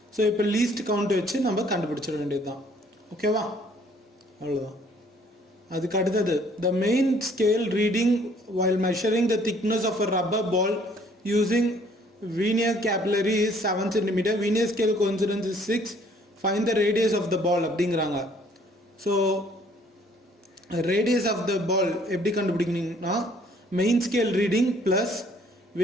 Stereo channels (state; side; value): normal; both; correlation 0.60